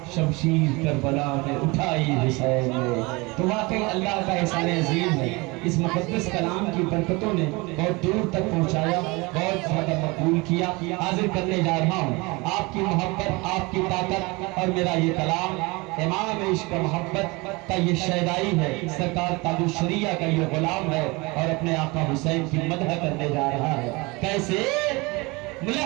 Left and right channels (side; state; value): left; quieter; 25.2 dB